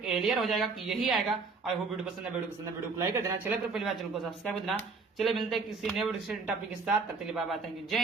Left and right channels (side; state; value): left; quieter; 4.4 dB